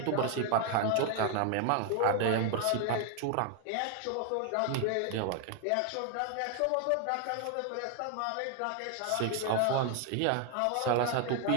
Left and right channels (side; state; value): both; different; correlation 0.00